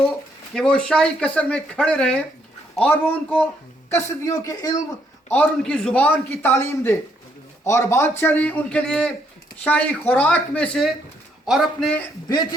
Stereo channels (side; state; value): both; normal; correlation 0.72